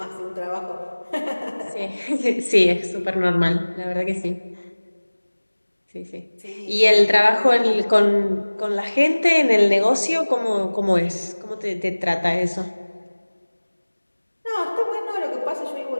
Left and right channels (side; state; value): both; inverted; correlation -1.00